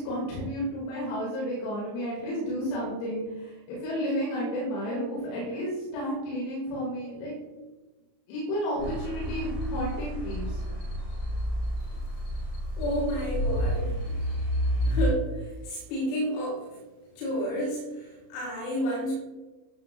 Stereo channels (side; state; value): right; late; 34 ms